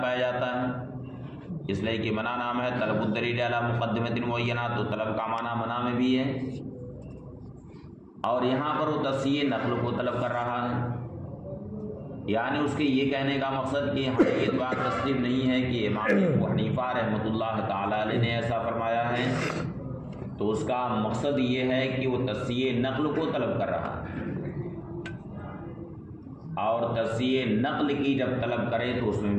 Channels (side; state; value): both; identical; correlation 1.00